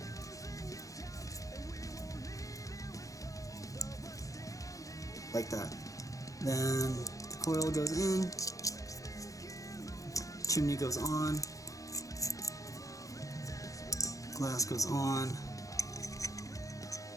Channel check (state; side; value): late; right; 0.16 ms